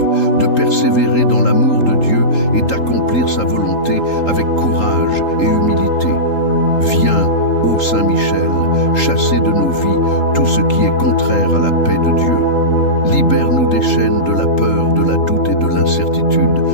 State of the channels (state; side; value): late; right; 3.8 ms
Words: de persévérer dans l'amour de Dieu et d'accomplir sa volonté avec courage et humilité. Viens, ô Saint Michel, chasser de nos vies tout ce qui est contraire à la paix de Dieu. Libère-nous des chaînes de la peur, de la doute et de l'incertitude,